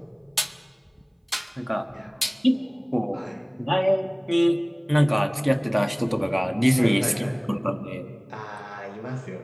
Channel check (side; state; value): both; identical; correlation 1.00